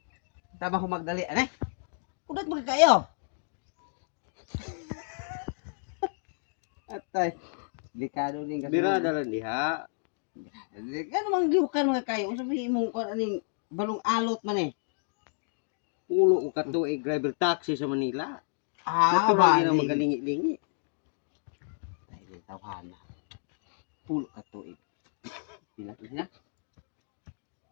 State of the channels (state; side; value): silent; right; digital silence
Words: Tama ko magdali ane. Kudat mo kayo. Atay. Delikado ning kasi. Bira dalan diha. Ano mang liukan mga kayo? Sabihin mo kung aning balong alot man eh. Pulo ko katuig driver taxi sa Manila. Ba? Natural na magalingi-lingi. Tayo tawhana. Pulo ka tuig. Pinato siya.